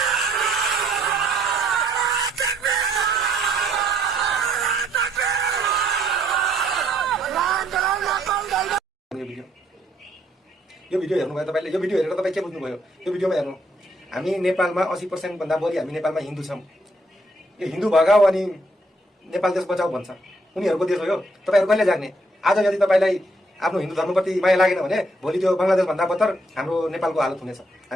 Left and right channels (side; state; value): both; normal; correlation 0.69